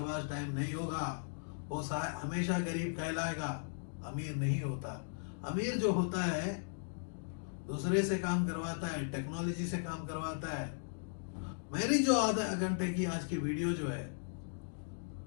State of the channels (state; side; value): silent; right; digital silence